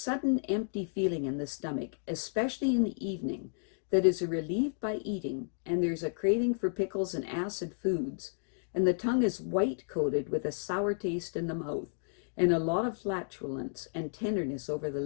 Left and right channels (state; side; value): silent; right; digital silence